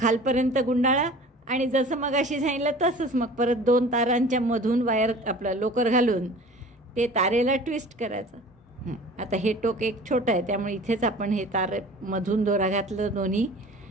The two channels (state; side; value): normal; both; correlation 0.43